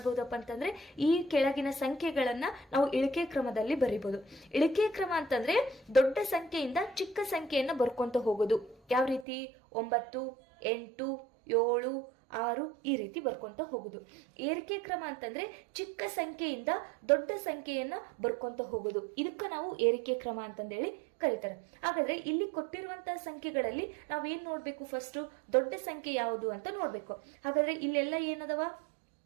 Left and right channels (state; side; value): drops out; left; at 9.2 s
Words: ಅಂತಂದ್ರೆ ಈ ಕೆಳಗಿನ ಸಂಖ್ಯೆಗಳನ್ನ ನಾವು ಇಳಿಕೆ ಕ್ರಮದಲ್ಲಿ ಬರಿಬಹುದು. ಇಳಿಕೆ ಕ್ರಮ ಅಂತಂದ್ರೆ ದೊಡ್ಡ ಸಂಖ್ಯೆಯಿಂದ ಚಿಕ್ಕ ಸಂಖ್ಯೆಯನ್ನ ಬರ್ಕೊಂತ ಹೋಗೋದು. ಯಾವ ರೀತಿ, 9, 8, 7, 6 ಈ ರೀತಿ ಬರ್ಕೊಂತ ಹೋಗುದು. ಏರಿಕೆ ಕ್ರಮ ಅಂತಂದ್ರೆ ಚಿಕ್ಕ ಸಂಖ್ಯೆಯಿಂದ ದೊಡ್ಡ ಸಂಖ್ಯೆಯನ್ನ ಬರ್ಕೊಂತ ಹೋಗುದು. ಇದಕ್ಕ ನಾವು ಏರಿಕೆ ಕ್ರಮ ಅಂತಂದೇಳಿ ಕರೀತಾರೆ. ಹಾಗಾದ್ರೆ ಇಲ್ಲಿ ಕೊಟ್ಟಿರುವಂತಹ ಸಂಖ್ಯೆಗಳಲ್ಲಿ ನಾವೇನ್ ನೋಡ್ಬೇಕು, ಫಸ್ಟ್ ದೊಡ್ಡ ಸಂಖ್ಯೆ ಯಾವುದು ಅಂತ ನೋಡ್ಬೇಕು. ಹಾಗಾದ್ರೆ ಇಲ್ಲೆಲ್ಲ ಏನದವ,